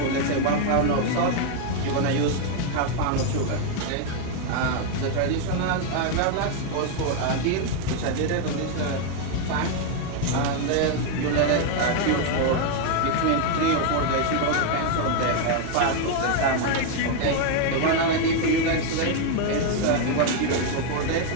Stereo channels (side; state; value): both; different; correlation 0.01